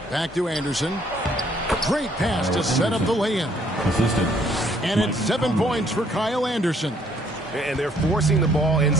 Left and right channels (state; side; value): normal; both; correlation 0.65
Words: Back to Anderson. Great pass to set up the lay-in. And it's 7 points for Kyle Anderson. And they're forcing the ball